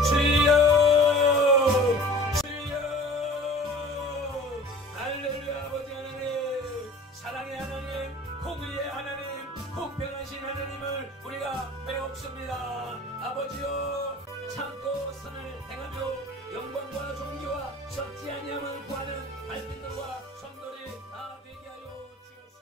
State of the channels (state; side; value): normal; both; correlation 0.44